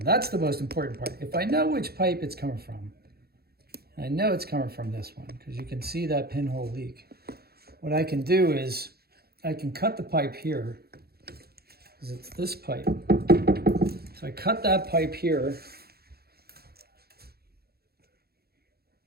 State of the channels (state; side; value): late; left; 0.46 ms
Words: the most important part. If I know which pipe it's coming from, I know it's coming from this one, because you can see that pinhole leak. What I can do is I can cut the pipe here, because it's this pipe. So I cut that pipe here.